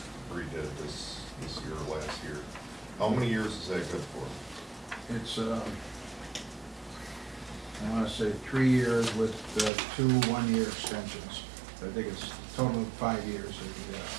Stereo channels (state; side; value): drops out; left; at 9.7 s